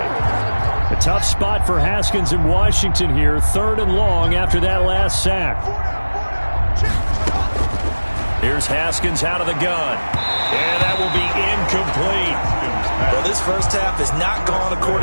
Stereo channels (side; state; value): both; inverted; correlation -1.00